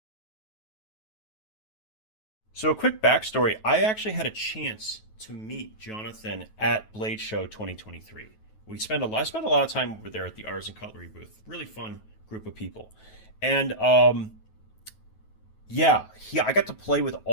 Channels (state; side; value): late; right; 9.3 ms